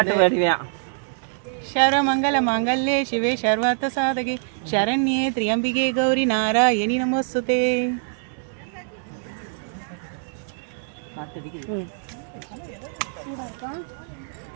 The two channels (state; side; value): silent; left; digital silence